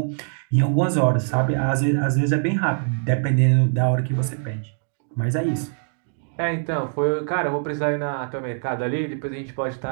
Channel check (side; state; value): left; silent; 63 dB below the other